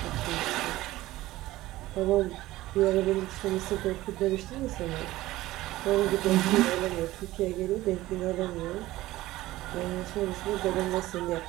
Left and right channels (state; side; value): quieter; left; 16.9 dB